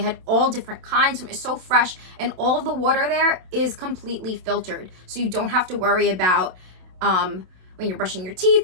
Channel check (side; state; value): left; late; 27 ms